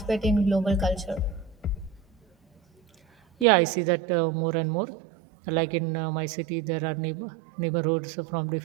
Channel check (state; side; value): drops out; left; at 3.5 s